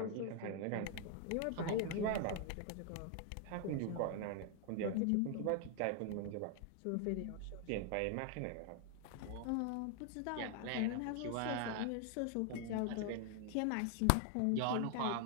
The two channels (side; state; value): both; different; correlation 0.00